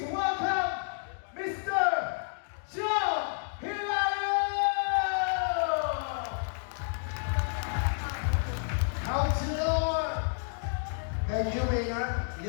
welcome Mr. Joe Hilaro! Councilor! Thank you, Mayor.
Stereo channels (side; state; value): right; silent; digital silence